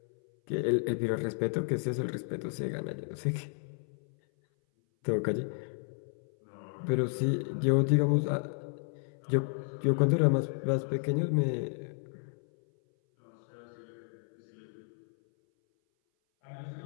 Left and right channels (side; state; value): right; silent; 56 dB below the other